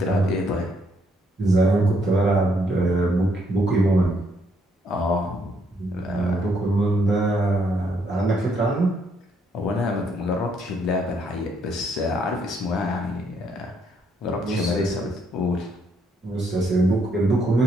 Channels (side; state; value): both; normal; correlation 0.72